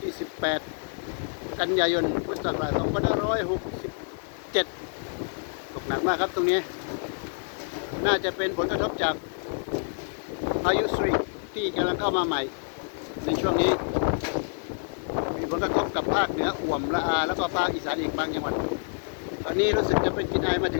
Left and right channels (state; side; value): silent; right; 60 dB below the other